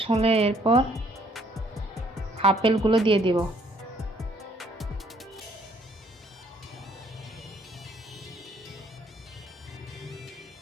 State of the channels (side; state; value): both; normal; correlation 0.64